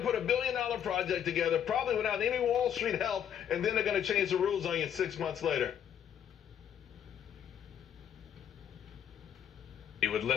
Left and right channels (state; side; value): quieter; right; 9.2 dB